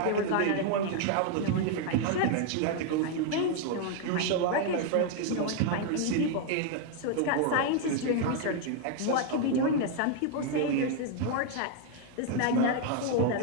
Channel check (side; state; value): both; different; correlation 0.00